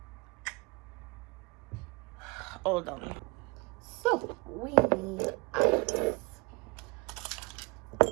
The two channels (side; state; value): left; quieter; 27.7 dB